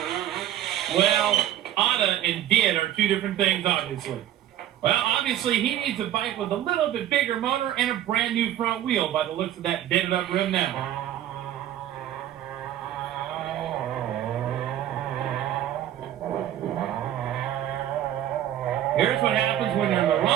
Well, oughta and did are two different things, obviously. Well, obviously, he needs a bike with a little bit bigger motor and a brand new front wheel by the looks of that dented up rim now. Here's what happens when you're in the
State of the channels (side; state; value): left; quieter; 11.9 dB